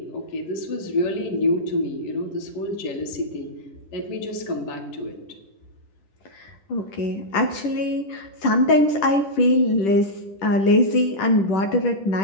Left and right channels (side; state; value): right; late; 10 ms